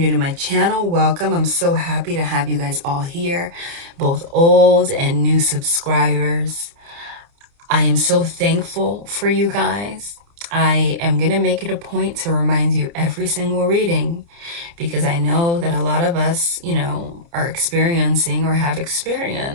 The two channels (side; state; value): left; late; 29 ms